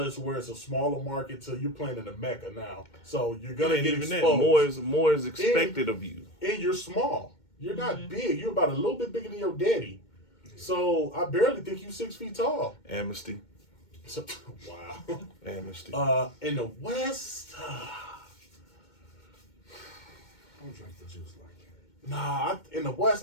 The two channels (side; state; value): right; late; 2.2 ms